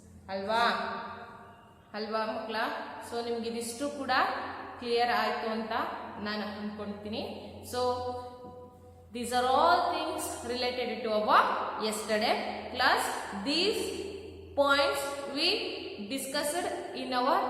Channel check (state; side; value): identical; both; correlation 1.00